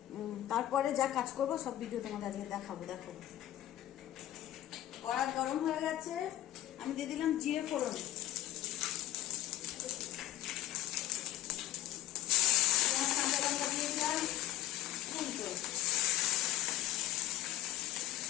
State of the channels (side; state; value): right; quieter; 13.8 dB